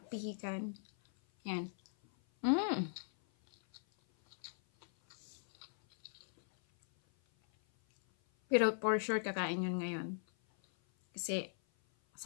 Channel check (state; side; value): silent; right; 52 dB below the other